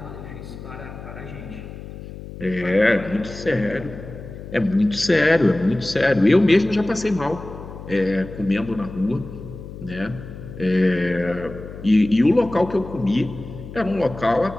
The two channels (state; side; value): noise; left; hum, 13 dB below the sound